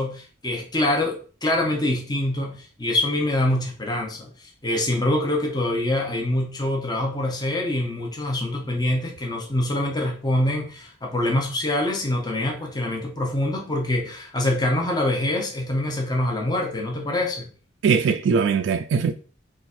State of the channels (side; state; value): both; normal; correlation 0.53